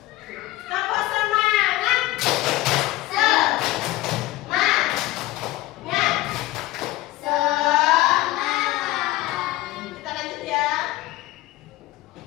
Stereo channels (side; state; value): right; quieter; 17.6 dB